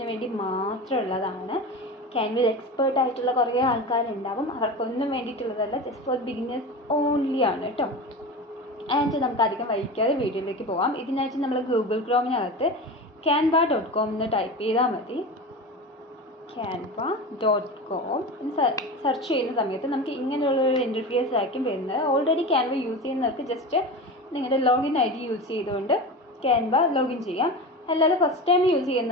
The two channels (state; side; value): normal; both; correlation 0.28